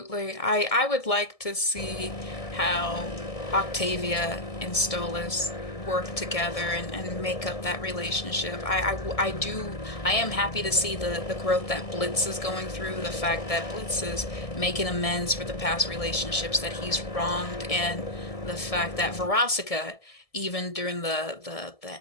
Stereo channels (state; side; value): late; right; 1.7 ms